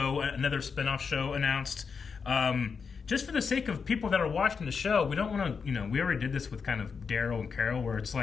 another spinoff show announced. Just for the sake of people that are watching the show, we don't want to, we already did this with kind of Daryl and Carol, where it's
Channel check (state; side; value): quieter; right; 5.7 dB